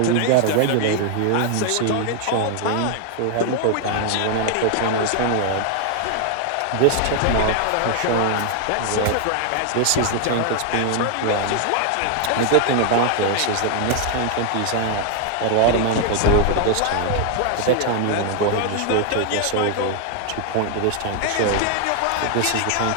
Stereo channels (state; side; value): different; both; correlation 0.00